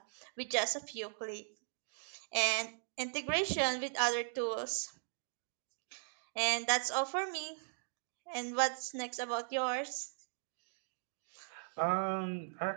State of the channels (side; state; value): left; silent; digital silence